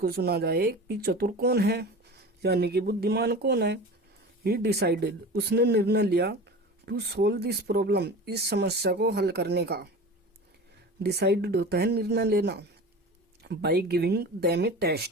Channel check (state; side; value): normal; both; correlation 0.34